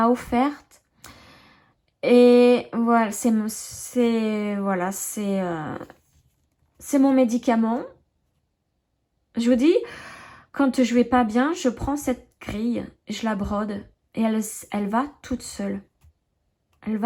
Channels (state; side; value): identical; both; correlation 1.00